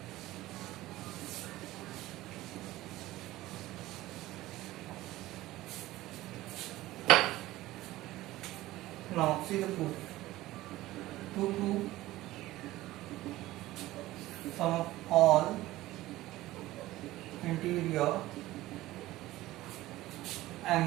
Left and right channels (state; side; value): quieter; left; 16.9 dB